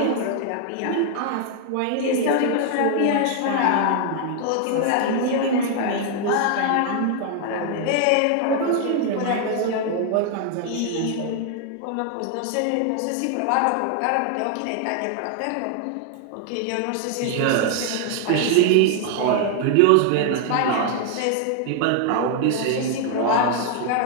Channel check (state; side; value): different; both; correlation 0.00